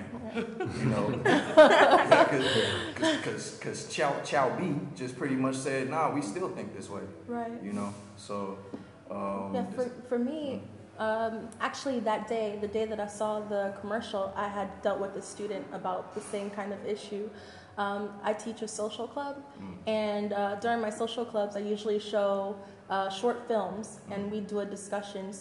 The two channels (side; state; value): both; identical; correlation 1.00